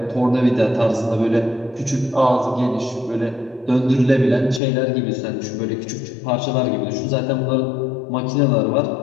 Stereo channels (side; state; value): right; drops out; at 4.6 s